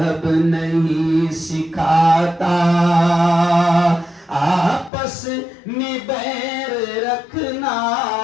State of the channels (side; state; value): right; drops out; at 4.9 s